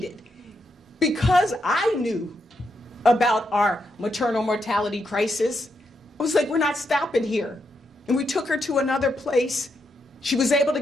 Because I knew about our maternal mortality crisis, I was like, we're not stopping here. And we took her to another place. She was able to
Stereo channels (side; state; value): both; normal; correlation 0.81